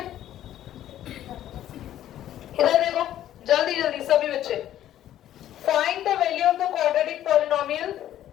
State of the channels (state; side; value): quieter; right; 12.2 dB